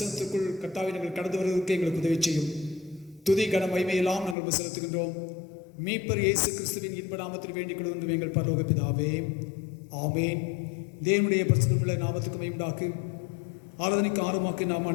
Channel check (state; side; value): drops out; right; at 4.4 s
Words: கர்த்தாவை நாங்கள் கடந்து வருவதற்கு எங்களுக்கு உதவி செய்யும். துதி கன மகிமையெல்லாம் நாங்கள் செலுத்துகின்றோம். மீட்பர் இயேசு கிறிஸ்துவின் இன்ப நாமத்தில் வேண்டிக் கொள்வது எங்கள் பரலோக பிதாவே, ஆமேன். தேவனுடைய பிரசனமுள்ள நாமத்துக்கு மகிமையுண்டாக்கு ஆராதனைக்கு ஆர்வமாக்கி நாம்